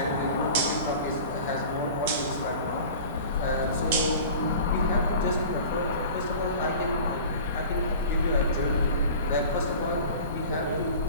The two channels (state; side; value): inverted; both; correlation -0.40